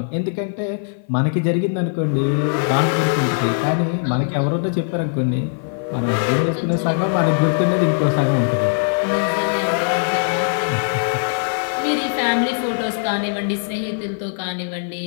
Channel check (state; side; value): silent; right; 57 dB below the other